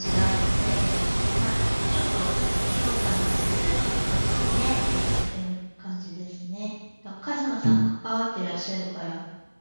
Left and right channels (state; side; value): inverted; both; correlation -1.00